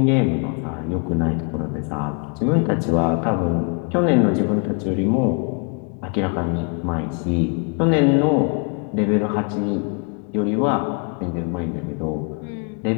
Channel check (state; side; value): quieter; right; 37.7 dB